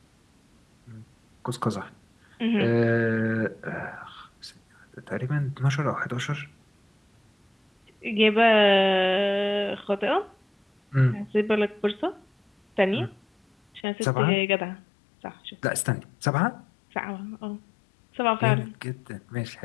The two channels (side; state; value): right; drops out; at 13.9 s